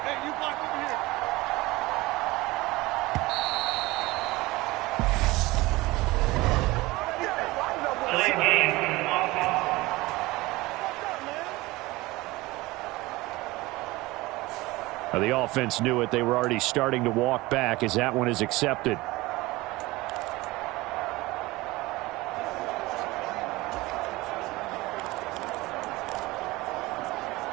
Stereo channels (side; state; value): left; quieter; 20.5 dB